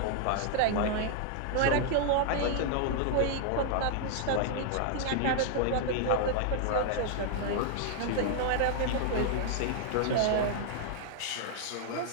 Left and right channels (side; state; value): both; different; correlation 0.00